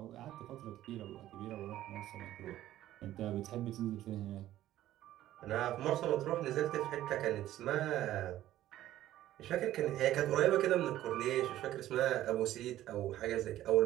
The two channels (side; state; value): left; quieter; 13.6 dB